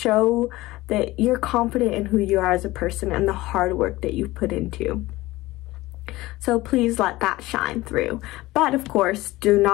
that you're confident in who you are as a person and the hard work that you put into. So please let that shine through. But of course, do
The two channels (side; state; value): right; quieter; 18.6 dB